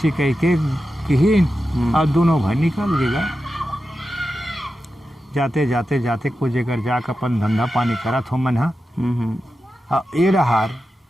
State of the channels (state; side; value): normal; both; correlation 0.91